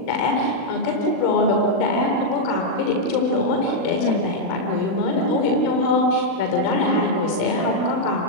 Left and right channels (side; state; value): right; late; 40 ms